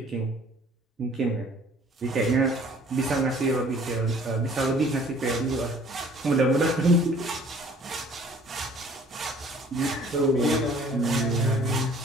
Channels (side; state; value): both; normal; correlation 0.54